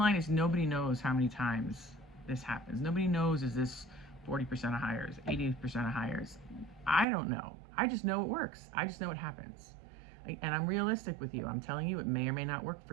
is nobody knows how many times this happens. Nobody knows, is this 40% of hires, 80% of hires? I don't know. I just know it works. I just know it happens. And I'm realistic with you. I'm telling you it may or may not work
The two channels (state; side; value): drops out; left; at 7.1 s